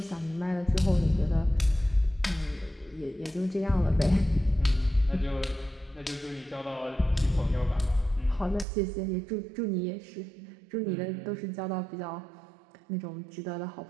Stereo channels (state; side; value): drops out; left; at 8.7 s